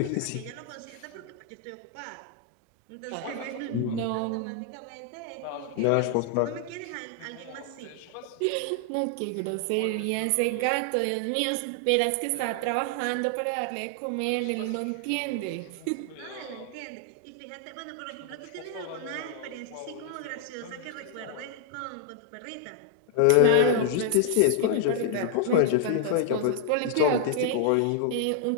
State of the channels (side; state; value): both; different; correlation 0.00